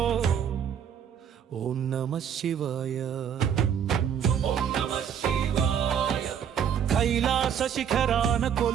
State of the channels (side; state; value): left; quieter; 8.4 dB